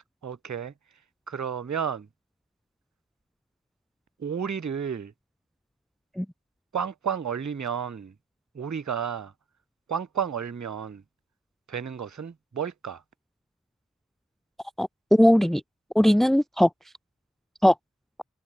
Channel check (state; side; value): normal; both; correlation 0.85